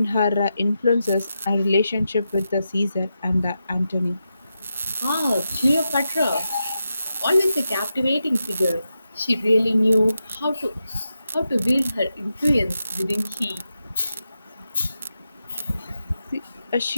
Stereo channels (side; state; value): both; inverted; correlation -0.88